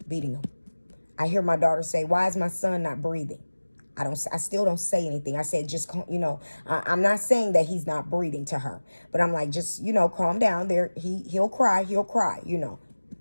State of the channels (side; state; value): both; inverted; correlation -1.00